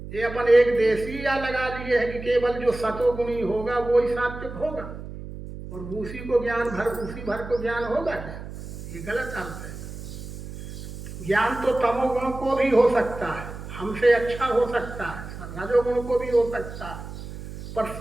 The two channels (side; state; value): right; noise; hum, 11 dB below the sound